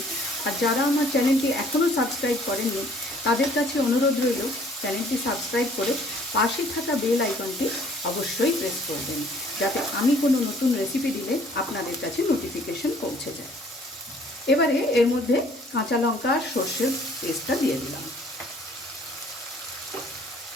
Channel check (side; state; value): both; normal; correlation 0.57